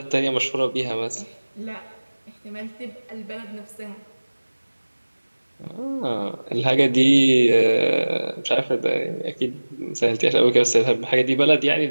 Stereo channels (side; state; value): both; inverted; correlation -1.00